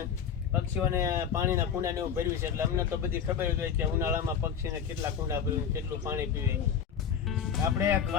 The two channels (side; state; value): right; quieter; 7.6 dB